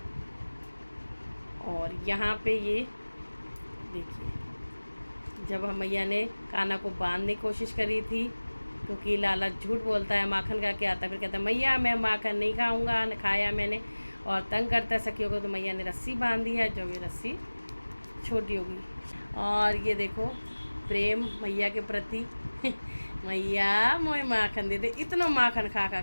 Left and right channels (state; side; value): inverted; both; correlation -1.00